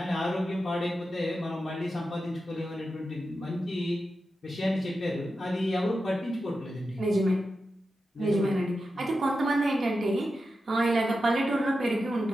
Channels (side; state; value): both; normal; correlation 0.90